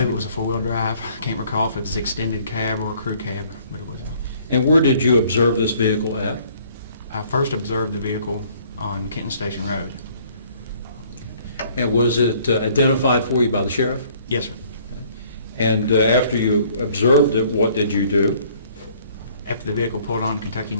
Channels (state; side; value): inverted; both; correlation -0.59